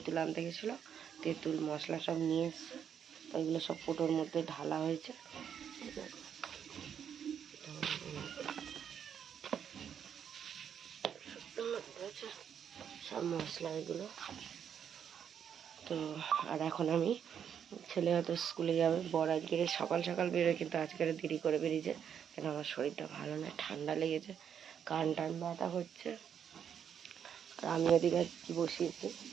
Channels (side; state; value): left; quieter; 8.3 dB